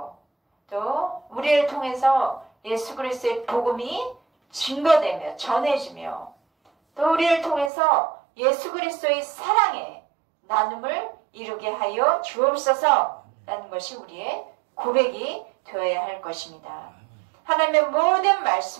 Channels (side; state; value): left; drops out; at 7.7 s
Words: 또 우리를 통해서 예수 그리스도의 복음이 증거되며 전해지며 또 우리를 통해서 예수 그리스도의 사랑의 나눔을 이루게 하여 주옵소서라는 것이 우리의 고백이 되어야 할 것입니다. 하나님의 모든